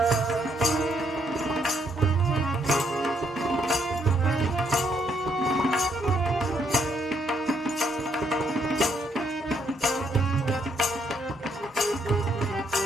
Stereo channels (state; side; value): normal; both; correlation 0.72